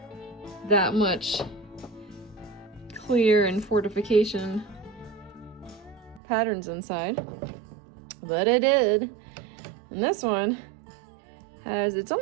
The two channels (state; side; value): drops out; left; at 6.2 s